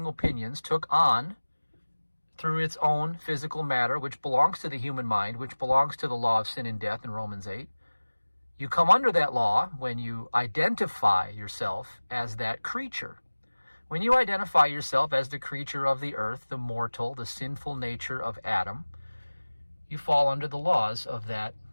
opinions, took on, through its own physical matter, which belongs to the human mind, which belongs to the law of sin and death in Romans 8. You come under that law when you identify yourself as that creature. When you identify yourself as the creature of the earth, the mortal, the sinful nature of Adam, you fall under the laws of that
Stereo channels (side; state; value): both; inverted; correlation -1.00